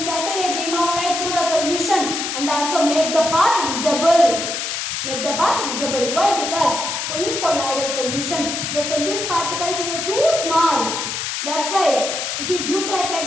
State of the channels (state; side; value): noise; left; hiss, 3 dB below the sound